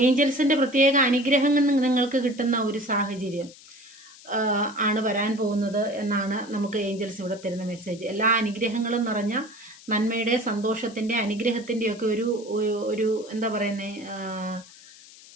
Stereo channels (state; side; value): noise; left; hiss, 21 dB below the sound